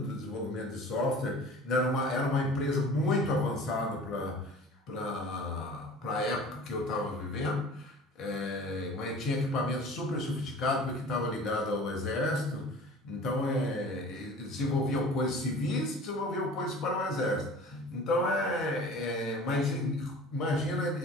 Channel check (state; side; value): normal; both; correlation 0.43